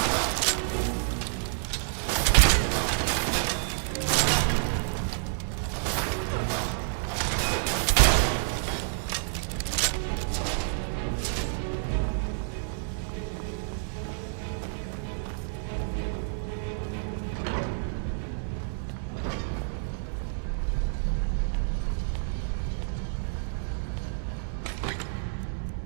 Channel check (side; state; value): left; silent; 59 dB below the other